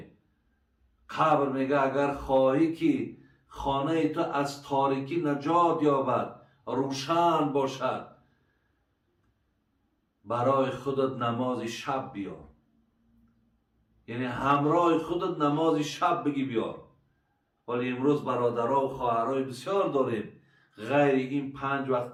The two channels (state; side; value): identical; both; correlation 1.00